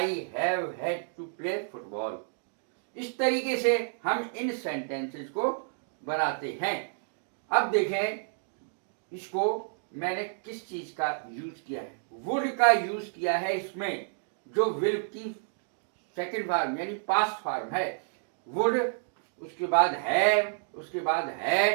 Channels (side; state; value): left; silent; digital silence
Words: have had to play football. इस तरीके से हम इन सेंटेंसेस को बनाते हैं। अब देखें इसको मैंने किस चीज का यूज किया है। वुड का यूज किया है इसमें, जो विल की सेकंड फॉर्म यानी पास्ट फॉर्म है। वुड, उसके बाद हैव, उसके बाद